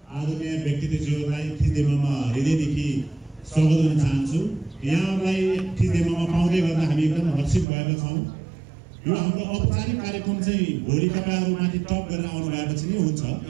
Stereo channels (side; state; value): left; drops out; at 7.7 s